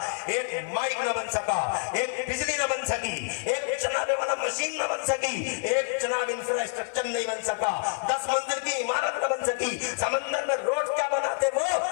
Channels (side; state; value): right; silent; digital silence